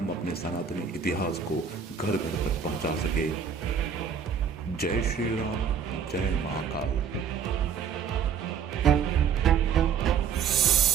अपने सनातनी इतिहास को घर घर तक पहुंचा सके। जय श्री राम, जय महाकाल।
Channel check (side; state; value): left; quieter; 6.9 dB